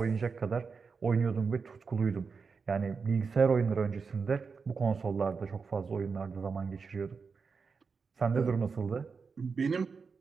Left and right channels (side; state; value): left; quieter; 5.2 dB